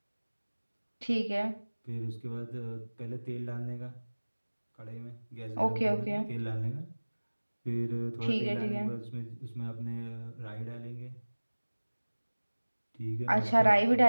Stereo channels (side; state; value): both; inverted; correlation -1.00